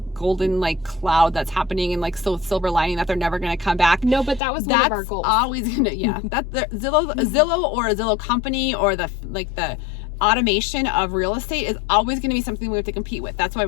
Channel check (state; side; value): drops out; right; at 4.4 s